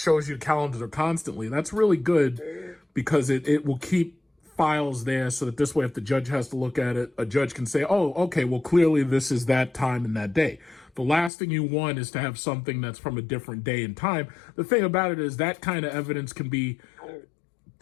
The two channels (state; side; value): drops out; right; at 11.3 s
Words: you the calendar constantly, that's really good because it will keep files there so that this way, if the judge has to look at it, a judge can say, oh, okay, well, clearly this is that time and that day. The last thing you want is to have something that's from a different day and time. The thing about it is that kind of evidence can be